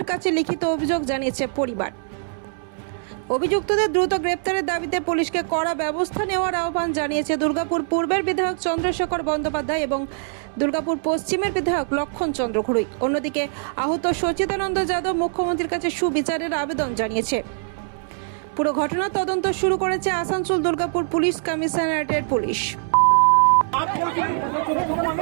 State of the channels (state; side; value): silent; left; 62 dB below the other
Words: কাছে লিখিত অভিযোগ জানিয়েছে পরিবার। অভিযুক্তদের দ্রুত গ্রেপ্তারের দাবিতে পুলিশকে কড়া ব্যবস্থা নেওয়ার আহ্বান জানিয়েছে দুর্গাপুর পূর্বের বিধায়ক চন্দ্রশেখর বন্দ্যোপাধ্যায় এবং দুর্গাপুর পশ্চিমের বিধায়ক লক্ষণ চন্দ্র ঘুরুই। অন্যদিকে আহত সচিদানন্দ যাদব মুখ্যমন্ত্রীর কাছে সুবিচারের আবেদন জানিয়েছে। পুরো ঘটনার তদন্ত শুরু করেছে আসানসোল দুর্গাপুর পুলিশ কমিশনারেটের পুলিশ।